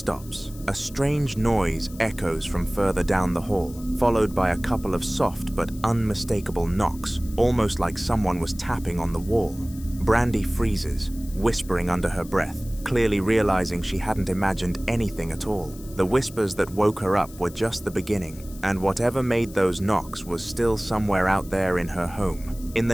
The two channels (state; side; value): noise; left; hiss, 20 dB below the sound